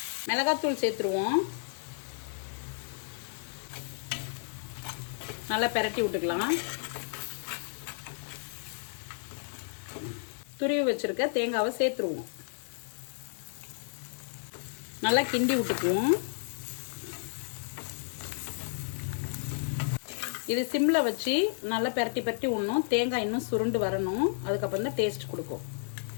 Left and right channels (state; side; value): silent; right; 56 dB below the other